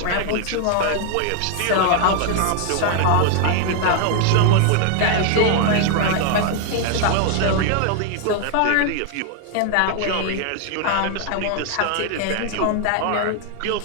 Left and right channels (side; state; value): both; different; correlation 0.00